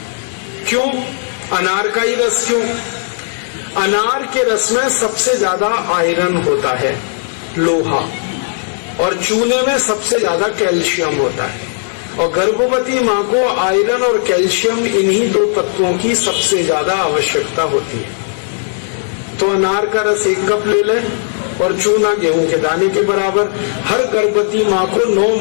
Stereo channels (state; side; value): silent; right; digital silence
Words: क्यों अनार का ही रस? क्यों? अनार के रस में सबसे ज्यादा आयरन होता है, लोहा, और चूने में सबसे ज्यादा कैल्शियम होता है। और गर्भवती माँ को आयरन और कैल्शियम, इन्हीं 2 तत्वों की सबसे ज्यादा आवश्यकता होती है। तो अनार का रस 1 कप ले लें और चूना गेहूं के दाने के बराबर हर गर्भवती माँ को 9